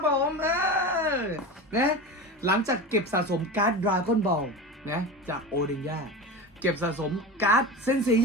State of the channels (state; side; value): normal; both; correlation 0.27